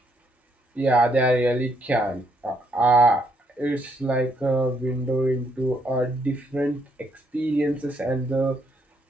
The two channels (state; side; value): normal; both; correlation 0.73